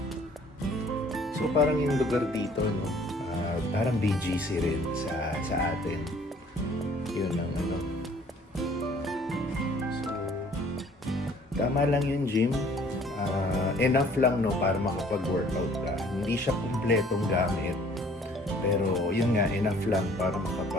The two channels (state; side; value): normal; both; correlation 0.56